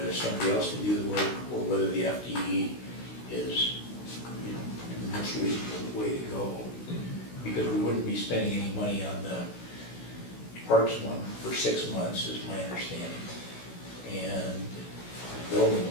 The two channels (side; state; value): right; late; 16 ms